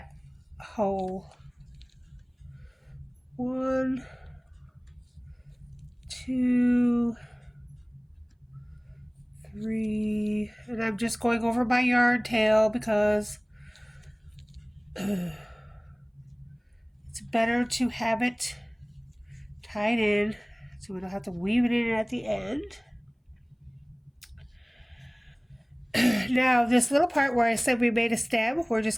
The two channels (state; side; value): identical; both; correlation 1.00